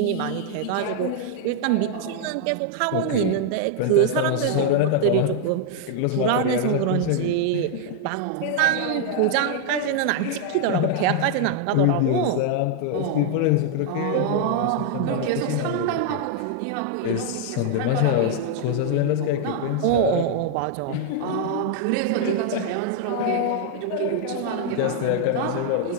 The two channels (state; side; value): different; both; correlation 0.00